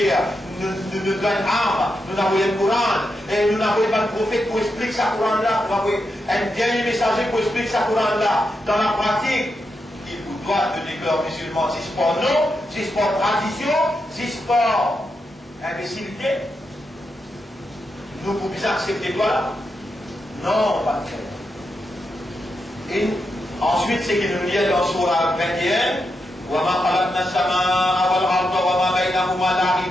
nous nous donne armes, nous avons le Coran, et nous n'avons pas de prophète pour expliquer ce Coran là, nous avons un dernier messager pour expliquer ce Coran là. Dans la pratique, il vous doit de déclarer musulman, si c'est pas non, si c'est pas tradition, si c'est pas imbécilité. Nous pouvons accepter quoi là? Non, pas de fait. Et ensuite, c'est qu'il nous dit dans Surah 21, nous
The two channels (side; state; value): both; normal; correlation 0.85